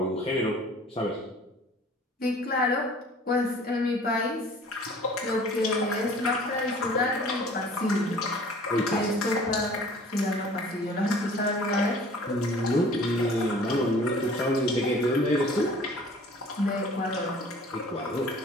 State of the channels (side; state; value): both; normal; correlation 0.49